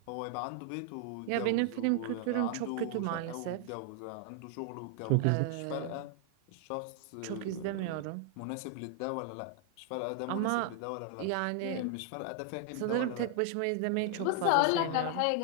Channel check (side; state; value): both; different; correlation 0.00